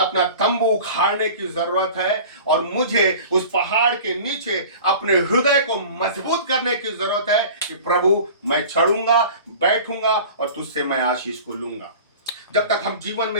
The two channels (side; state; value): both; inverted; correlation -0.40